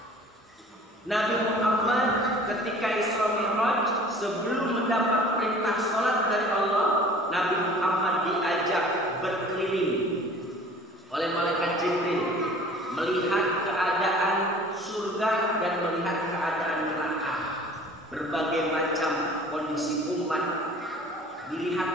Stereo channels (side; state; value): both; normal; correlation 0.47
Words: Nabi Muhammad ketika Isra Mi'raj, sebelum mendapat perintah sholat dari Allah, Nabi Muhammad diajak berkeliling oleh malaikat Jibril, melihat keadaan surga dan melihat keadaan neraka. Berbagai macam kondisi umat